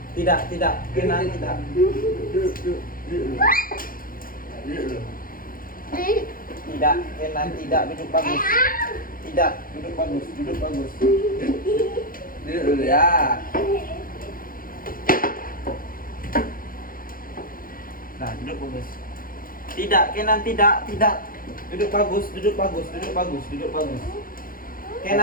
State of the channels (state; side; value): late; right; 0.41 ms